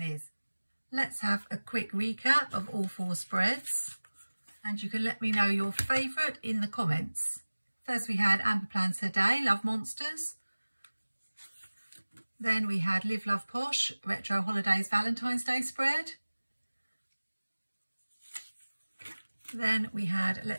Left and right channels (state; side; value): inverted; both; correlation -1.00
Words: is. Let's have a quick recap of all 4 spreads, and you can let me know your favourite in the comments. First we had Amber Plans Her Day, Love Monsters. Then we had Live Love Posh, Retro Holidays Valentine's Day spread. Then we had